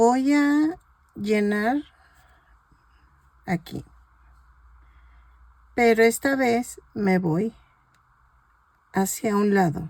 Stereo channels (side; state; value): both; identical; correlation 1.00